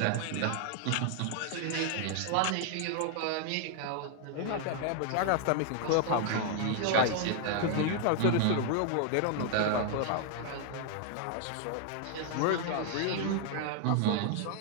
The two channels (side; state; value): both; different; correlation 0.00